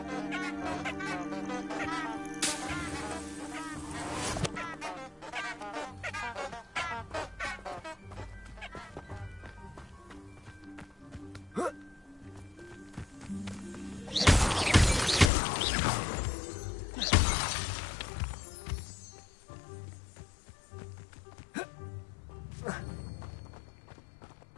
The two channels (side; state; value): right; drops out; at 15.3 s